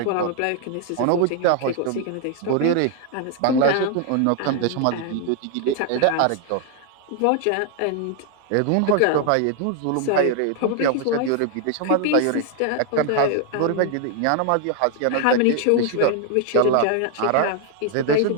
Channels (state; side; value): different; both; correlation 0.00